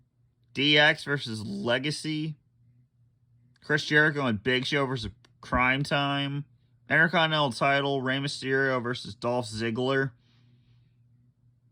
DX versus Legacy. Chris Jericho and Big Show versus Crime Time. Intercontinental title, Rey Mysterio versus Dolph Ziggler.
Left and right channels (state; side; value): identical; both; correlation 1.00